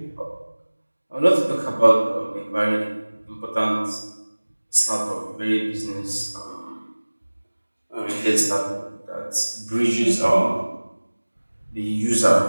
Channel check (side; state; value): both; inverted; correlation -1.00